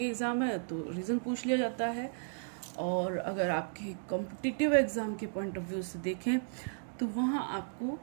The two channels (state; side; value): silent; left; digital silence